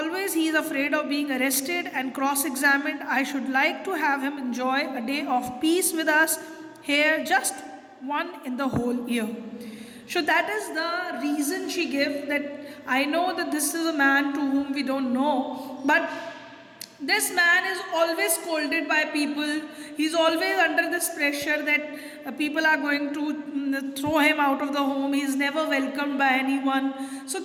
he is afraid of being arrested and cross-examined. I should like to have him enjoy a day of peace with us here, just one in the whole year. So that is the reason she gave, that I know that this is a man to whom we don't know, but this man is always scolded by people. He's always under this pressure that people are going to throw him out of the home. He's never welcomed by anyone. So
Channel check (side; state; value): both; identical; correlation 1.00